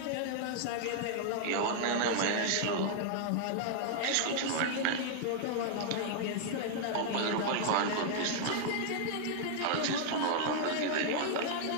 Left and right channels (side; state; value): both; different; correlation 0.00